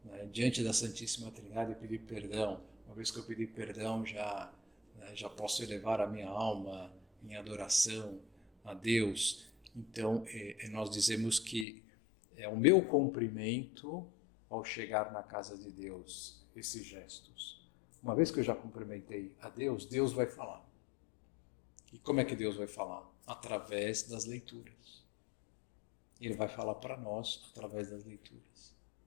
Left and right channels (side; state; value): right; drops out; at 11.7 s